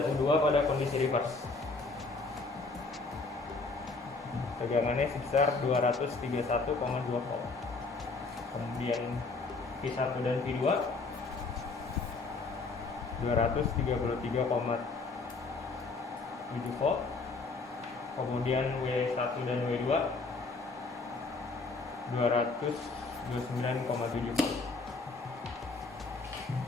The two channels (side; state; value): right; quieter; 3.9 dB